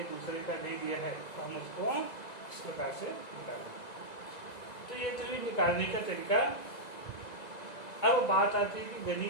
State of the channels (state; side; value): late; right; 1.9 ms